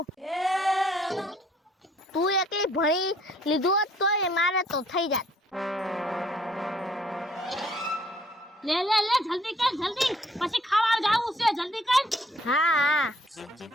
તું એકલી ભણી લીધું હોત તોય મારે તો થઈ જાત. લે જલ્દી કર જલ્દી, પછી ખાવા જાવું છે, જલ્દી કર. હા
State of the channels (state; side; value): normal; both; correlation 0.63